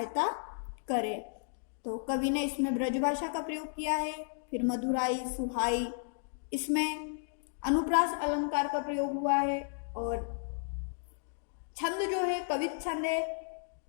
करें। तो कवि ने इसमें ब्रजभाषा का प्रयोग किया है, फिर मधुराई, सुहाई, इसमें अनुप्रास अलंकार का प्रयोग हुआ है, और छंद जो है कवित छंद है,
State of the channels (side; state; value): right; silent; digital silence